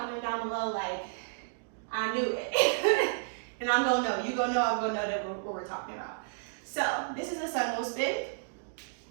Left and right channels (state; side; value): silent; left; digital silence